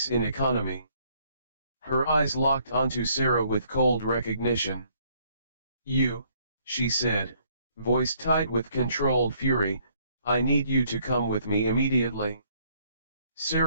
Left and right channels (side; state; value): both; inverted; correlation -0.66